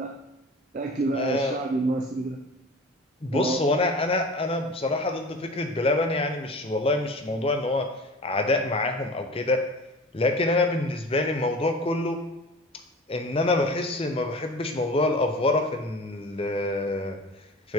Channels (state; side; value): normal; both; correlation 0.38